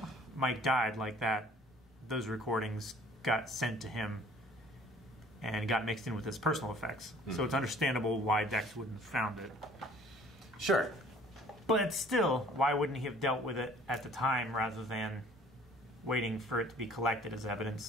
Mike died like that. Those recordings got sent to him and got mixed in with his personal effects. So it's understandable why Dex wouldn't have found it. Sure. But still, why wouldn't he have dealt with it at the time rather than waiting for it to be collected as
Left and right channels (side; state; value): both; normal; correlation 0.53